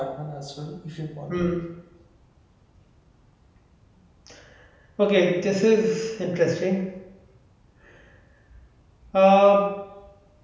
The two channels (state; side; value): identical; both; correlation 1.00